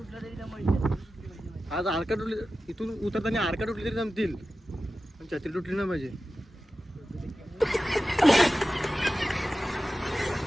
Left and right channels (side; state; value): both; normal; correlation 0.94